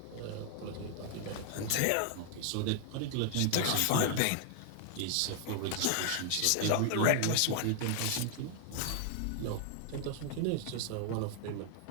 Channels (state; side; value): different; both; correlation 0.00